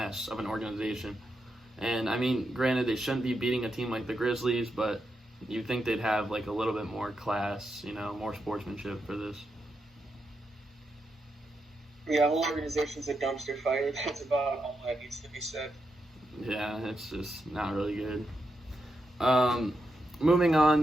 of an organization. And I mean, granted, they shouldn't be beating a team like the Grizzlies, but you'd think they'd have like a little bit more class, more sportsmanship for this. Yeah, whole organization's a dumpster fire. That's about all that needs to be said. Yeah, it's just not really good. Moving on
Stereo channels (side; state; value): both; normal; correlation 0.85